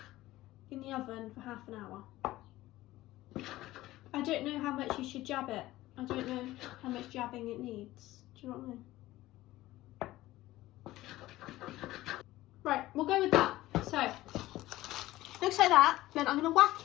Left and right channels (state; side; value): quieter; right; 16.6 dB